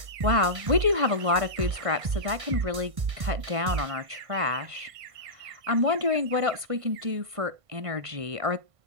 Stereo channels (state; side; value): late; left; 1.5 ms